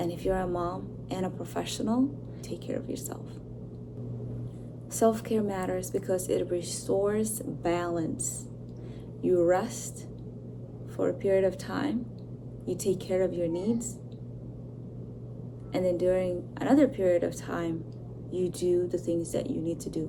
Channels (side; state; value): both; identical; correlation 1.00